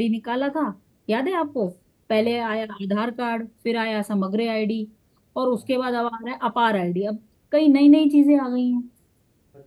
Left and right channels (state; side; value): identical; both; correlation 1.00